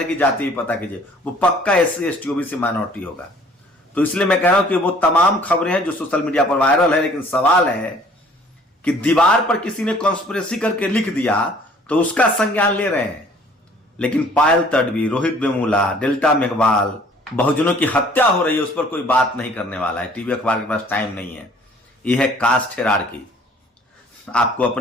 की जाति भी पता कीजिए, वो पक्का एससी एसटी ओबीसी माइनॉरिटी होगा। तो इसलिए मैं कह रहा हूं कि वो तमाम खबरें हैं जो सोशल मीडिया पर वायरल है। लेकिन सवाल है कि दीवार पर किसी ने कॉन्स्पिरेसी करके लिख दिया तो उसका संज्ञान ले रहे हैं, लेकिन पायल तडवी, रोहित वेमुला, डेल्टा मेघवाल, बहुजनों की हत्या हो रही है, उस पर कोई बात नहीं करने वाला है। टीवी अखबार के पास टाइम नहीं है। यह है कास्ट हिरार्की। आपको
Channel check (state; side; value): normal; both; correlation 0.55